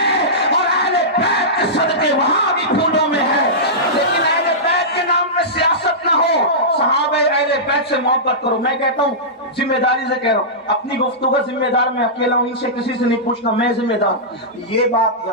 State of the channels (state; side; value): normal; both; correlation -0.16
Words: اور اہل بیت کے صدقے وہاں بھی پھولوں میں ہے. لیکن اہل بیت کے نام میں سیاست نہ ہو، صحابہ اہل بیت سے محبت کرو. میں کہتا ہوں ذمہ داری سے کہہ رہا ہوں، اپنی گفتگو کا ذمہ دار میں اکیلا ہوں، ان سے کسی سے نہیں پوچھنا، میں ذمہ دار. یہ بات